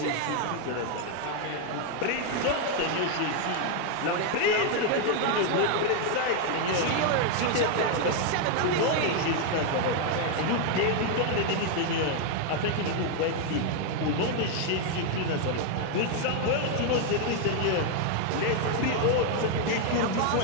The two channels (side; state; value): both; different; correlation 0.00